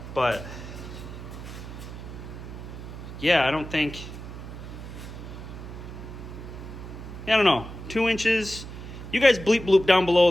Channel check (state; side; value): noise; right; hum, 11 dB below the sound